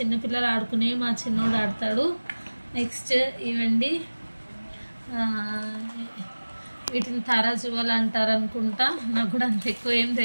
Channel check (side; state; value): both; inverted; correlation -1.00